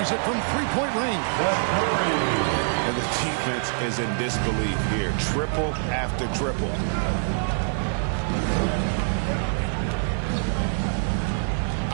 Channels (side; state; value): left; silent; digital silence